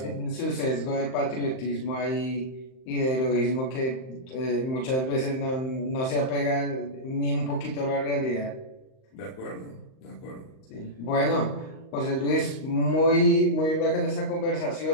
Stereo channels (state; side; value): late; right; 38 ms